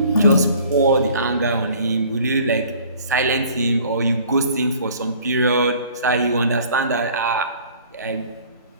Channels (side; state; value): both; inverted; correlation -0.52